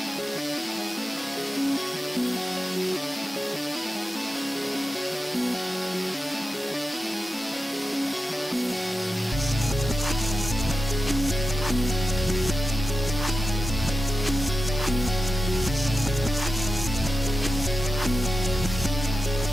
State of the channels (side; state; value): both; normal; correlation 0.91